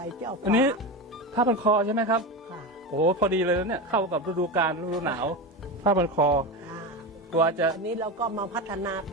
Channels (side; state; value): both; normal; correlation 0.20